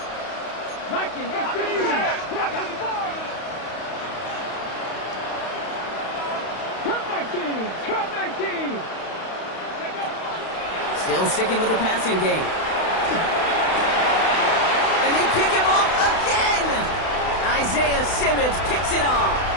Viking 18. Cup 19. Cup 19. Still sticking with the passing game. And they pick him off again! Isaiah Simmons picks it off.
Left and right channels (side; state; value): right; late; 32 ms